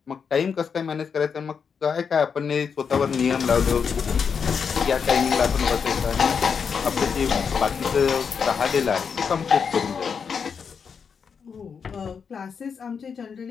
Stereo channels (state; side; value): quieter; right; 6.3 dB